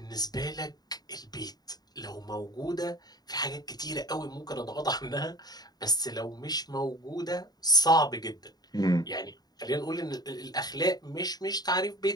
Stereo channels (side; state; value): right; late; 0.19 ms